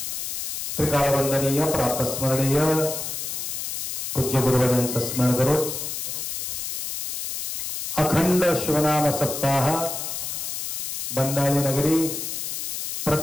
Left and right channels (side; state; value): left; noise; hiss, 4 dB below the sound